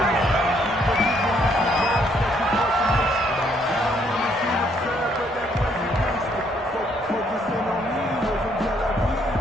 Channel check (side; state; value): both; normal; correlation 0.69